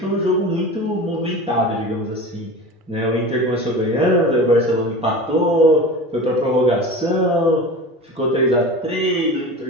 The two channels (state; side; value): normal; both; correlation 0.33